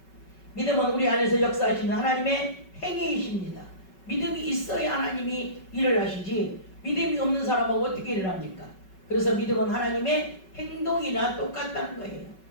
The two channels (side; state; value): right; late; 5.3 ms